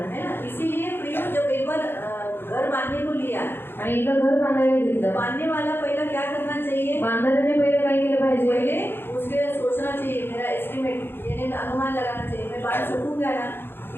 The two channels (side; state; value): right; late; 0.10 ms